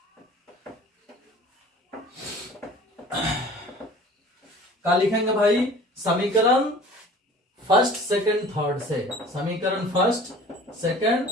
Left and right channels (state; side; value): normal; both; correlation 0.46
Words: क्या लिखेंगे भाई, समीकरण फर्स्ट सेकंड थर्ड से, समीकरण फर्स्ट सेकंड